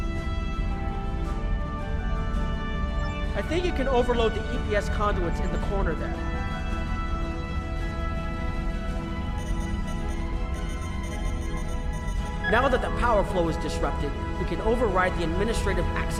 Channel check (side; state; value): both; identical; correlation 1.00